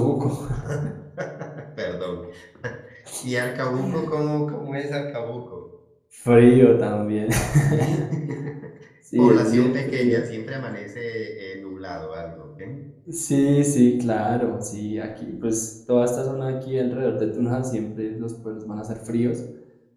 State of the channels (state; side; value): identical; both; correlation 1.00